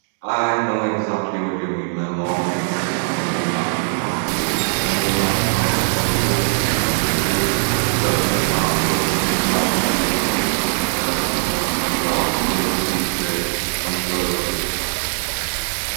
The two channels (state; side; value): silent; left; 66 dB below the other